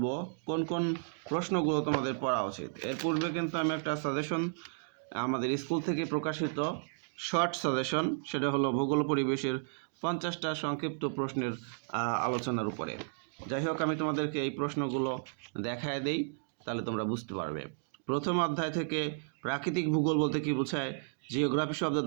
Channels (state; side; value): silent; left; digital silence